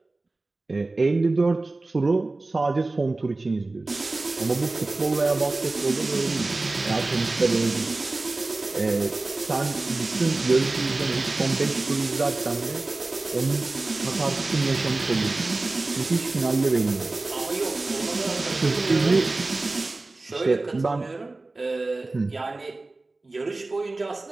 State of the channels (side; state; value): left; quieter; 3.2 dB